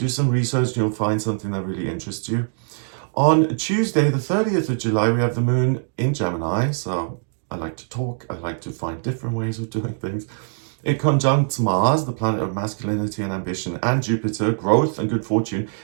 some research and you'll find something that really interests you. On Tuesday, the 30th of July, we have the moon in Gemini. So I like to talk. I like to find different ways of doing things. It conjuncts Mars, the planet of masculinity and ambition, and Jupiter, growth and good fortune.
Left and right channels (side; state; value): left; silent; digital silence